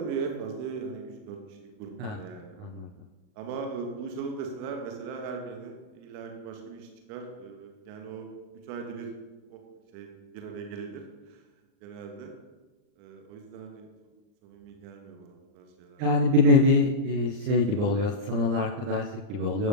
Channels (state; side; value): late; left; 39 ms